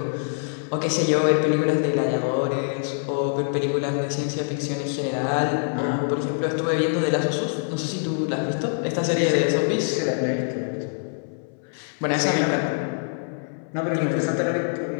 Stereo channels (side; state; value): right; silent; 62 dB below the other